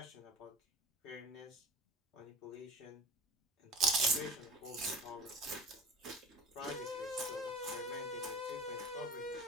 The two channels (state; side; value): normal; both; correlation 0.38